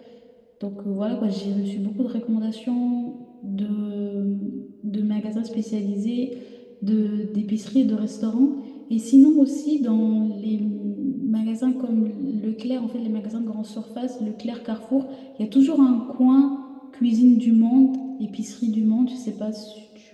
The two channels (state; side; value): identical; both; correlation 1.00